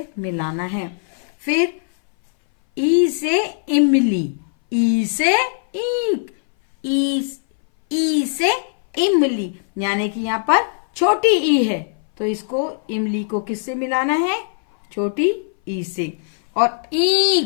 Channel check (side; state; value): right; silent; 60 dB below the other